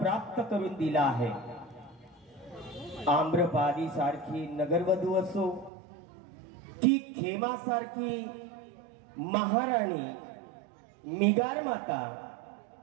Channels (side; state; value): left; drops out; at 5.7 s